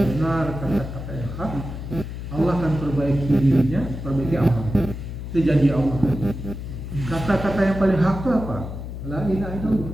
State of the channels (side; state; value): left; noise; hum, 8 dB below the sound